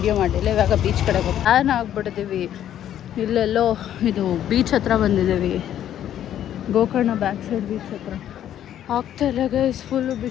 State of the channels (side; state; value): right; quieter; 11.0 dB